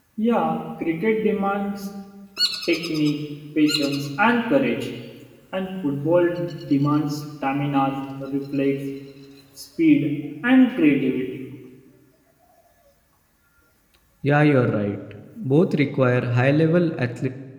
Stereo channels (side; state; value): both; identical; correlation 1.00